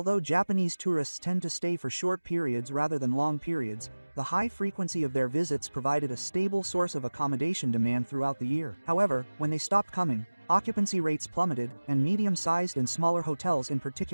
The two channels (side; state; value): both; inverted; correlation -1.00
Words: Japanese tourists tend to stay for short periods rather than long periods, the high frequency of their visits provided a stable source of accommodation demand throughout the year. However, when they stopped coming, occupancy rates plummeted, and medium-sized and smaller hotels in